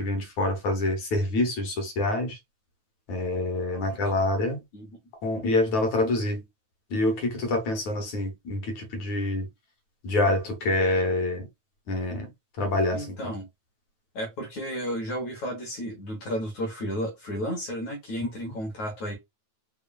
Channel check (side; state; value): right; late; 9.2 ms